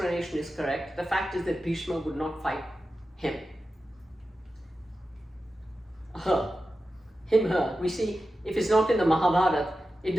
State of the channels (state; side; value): normal; both; correlation 0.92